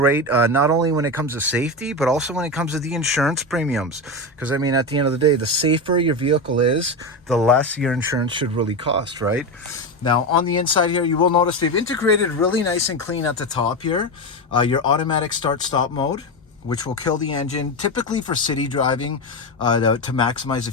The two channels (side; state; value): both; normal; correlation 0.16